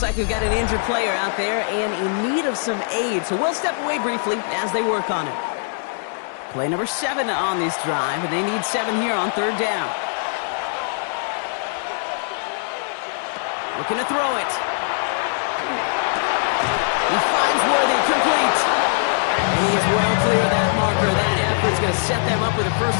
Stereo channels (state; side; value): silent; right; digital silence